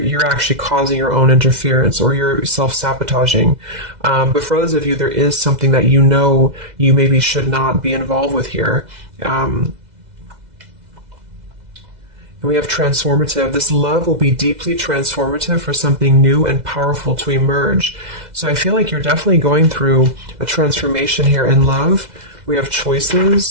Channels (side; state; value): left; late; 2.0 ms